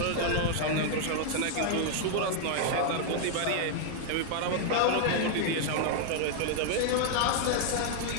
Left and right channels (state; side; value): different; both; correlation 0.00